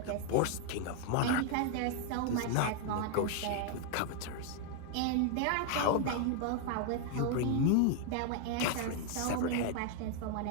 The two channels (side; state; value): both; different; correlation 0.00